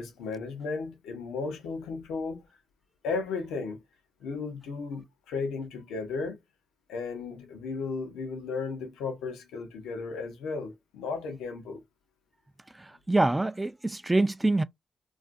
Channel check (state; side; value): normal; both; correlation 0.82